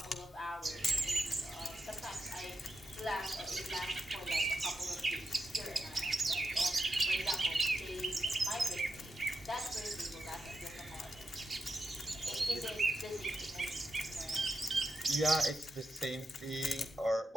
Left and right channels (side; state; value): both; normal; correlation 0.87